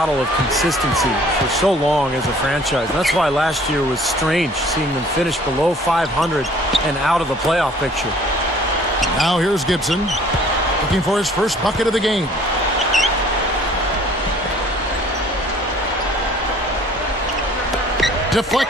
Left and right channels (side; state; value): both; normal; correlation 0.54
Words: of consistency for so long as a franchise. And that's why last year was strange, seeing them finish below 500 and out of the playoff picture. Now here's Gibson, looking for his first bucket of the game.